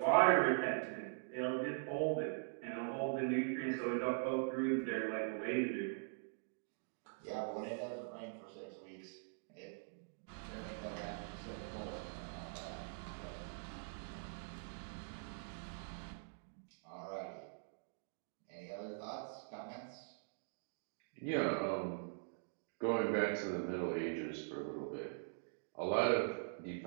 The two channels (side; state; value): left; silent; digital silence